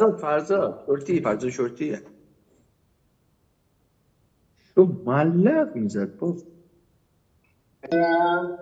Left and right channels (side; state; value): both; identical; correlation 1.00